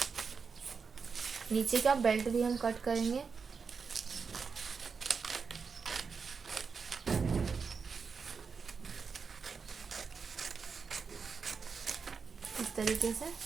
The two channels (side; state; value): left; quieter; 5.4 dB